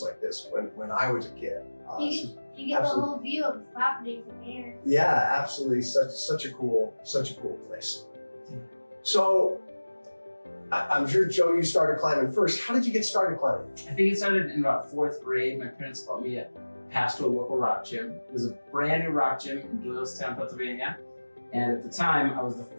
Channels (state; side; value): inverted; both; correlation -1.00